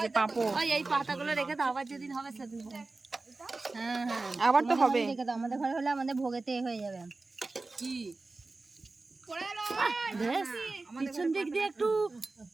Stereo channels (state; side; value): quieter; left; 3.5 dB